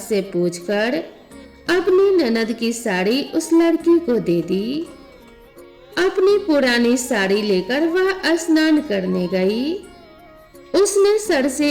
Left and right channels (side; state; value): both; identical; correlation 1.00